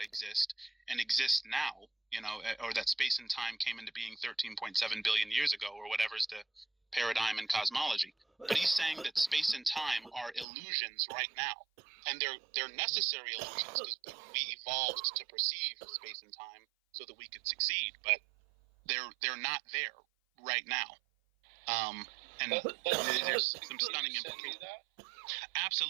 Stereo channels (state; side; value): drops out; left; at 10.5 s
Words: exist and exists now, or that space and time came into being 13.7 billion years ago, or whatever's the paradigm in cosmology. But he's saying that space and time are illusions right now, and they're necessary illusions because we evolved to perceive space and time so that we could succeed. But they're not there right now. And there's some stunning implications.